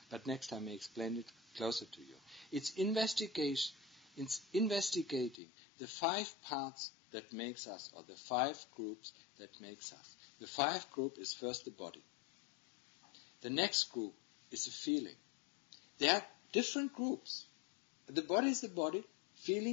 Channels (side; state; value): right; drops out; at 5.4 s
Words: But next time I explain it closer to you. It's investigation. It's investigating the 5 parts that makes us, or the 5 groups that makes us. The 5 group is first the body. The next group is the feeling. There are different groups. The body is the body.